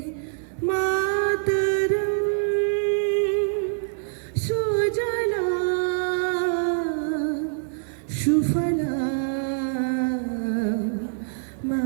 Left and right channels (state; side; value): silent; left; 62 dB below the other